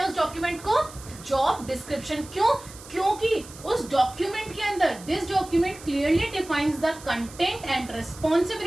उस डॉक्यूमेंट को, जॉब डिस्क्रिप्शन। क्यों? क्योंकि उस डॉक्यूमेंट के अंदर this document clearly defines the content and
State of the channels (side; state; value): right; noise; hiss, 18 dB below the sound